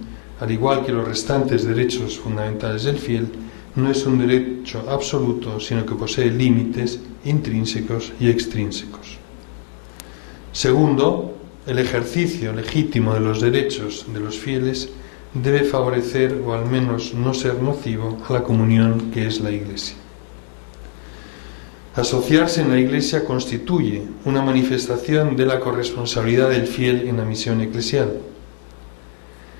al igual que los restantes derechos fundamentales del fiel, no es un derecho absoluto, sino que posee límites intrínsecos y extrínsecos. Segundo, el ejercicio legítimo de los derechos de los fieles debe favorecer o al menos no ser nocivo a la comunión que es la Iglesia. Asociarse en la Iglesia constituye una manifestación de la corresponsabilidad del fiel en la misión eclesial.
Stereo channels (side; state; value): right; silent; digital silence